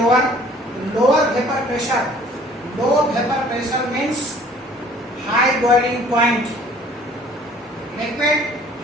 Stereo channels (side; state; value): both; normal; correlation 0.54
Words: Lower vapor pressure. Low vapor pressure means high boiling point. Liquid